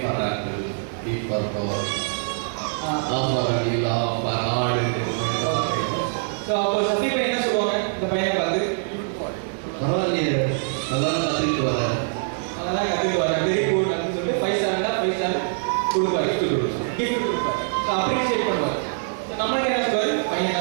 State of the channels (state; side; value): silent; left; digital silence